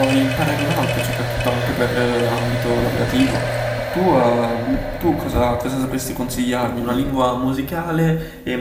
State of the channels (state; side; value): identical; both; correlation 1.00